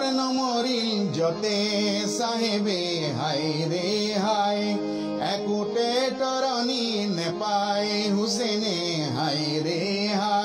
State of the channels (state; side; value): identical; both; correlation 1.00